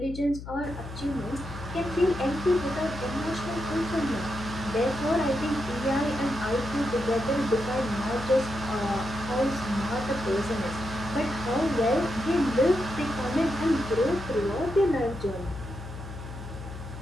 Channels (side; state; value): left; noise; hum, 11 dB below the sound